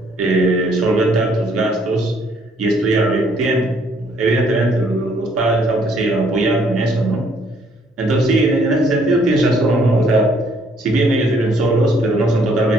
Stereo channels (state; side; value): normal; both; correlation 0.65